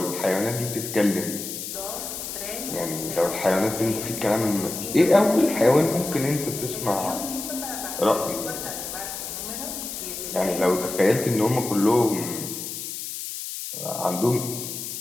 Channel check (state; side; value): noise; left; hiss, 7 dB below the sound